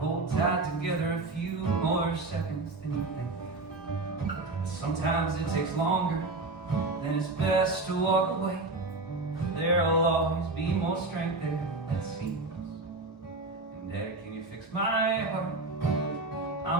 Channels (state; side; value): quieter; left; 3.2 dB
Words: tight together a few more seconds than you think. Sometimes it takes longer, then it's best to walk away. There'll always be more strength there, that seems. And Daddy, can you fix my heart?